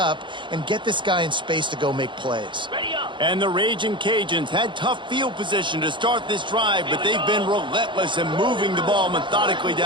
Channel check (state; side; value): late; left; 0.23 ms